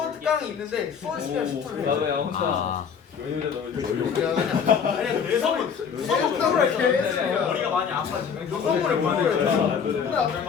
특강이 있는데 수원 시간 10초를 해. 아 아니야, 내 선물. 머리가 많이 아파 지금. 너 선물을 보내야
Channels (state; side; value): quieter; right; 6.8 dB